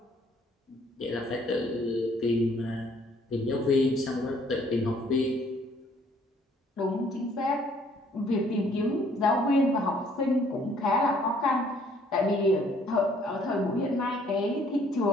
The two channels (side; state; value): both; normal; correlation 0.62